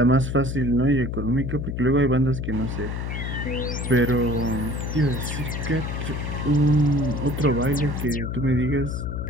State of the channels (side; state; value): left; noise; hum, 4 dB below the sound